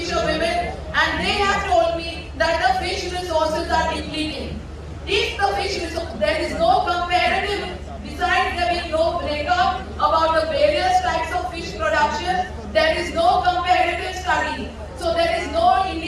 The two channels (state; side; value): identical; both; correlation 1.00